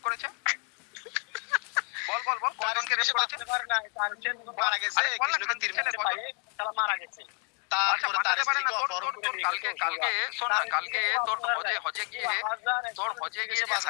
করেছে? বল কজনকে রেপ করেছে? মারা গেছে, কৃষ্ণকে তীর মারছে পায়ে, তারা মারা গেছে। তারপরে তার স্ত্রীকে অপহরণ করে নিয়ে গেছে। কালকে শোন না, কালকে তোর হজে গিয়ে তোর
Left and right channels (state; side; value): quieter; right; 37.0 dB